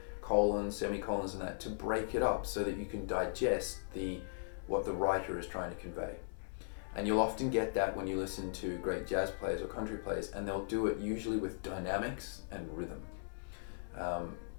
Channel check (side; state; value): right; silent; digital silence